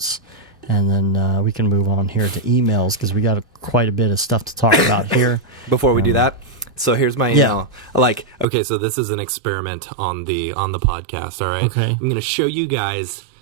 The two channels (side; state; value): left; drops out; at 8.5 s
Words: and then we can move on here to emails, because we got quite a bit of stuff to talk about here. Before we do that, so here's my email. So this is an experiment on the podcast, all right? Okay. I'm going to show you guys